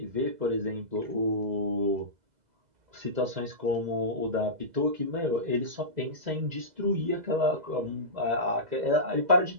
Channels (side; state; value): left; late; 2.0 ms